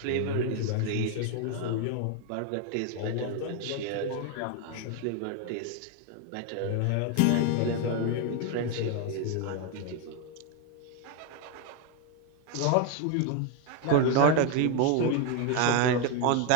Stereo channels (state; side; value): different; both; correlation 0.01